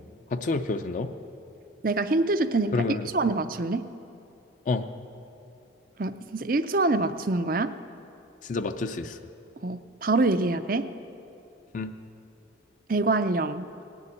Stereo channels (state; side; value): normal; both; correlation 0.36